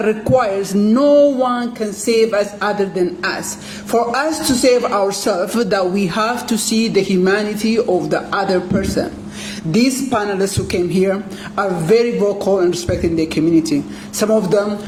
requires no one can save us other than us. For us to save ourselves, that we have to see the humanity of the other person. These panelists who came here are very vocal in respecting their community. Some of them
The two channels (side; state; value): both; identical; correlation 1.00